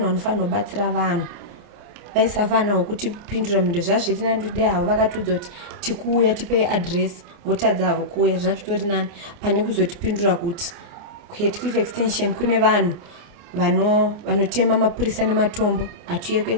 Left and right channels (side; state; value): left; late; 29 ms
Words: vanofanira kubatsira vanhu. Vaisa vana wokutipindura mhindo zvazviri nani kuti dai havo vakatudza kuti tikuuya tipe adresi votadza havo kuuya zvazvitori nani pane kuzotipindura kuti kuHatcliffe extension kune vanhu vanotema mapurisa nematombo hatiuye